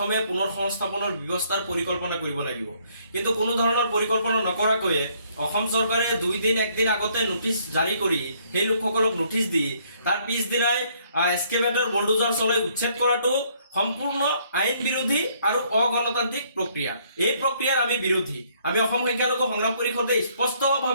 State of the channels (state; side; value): inverted; both; correlation -0.66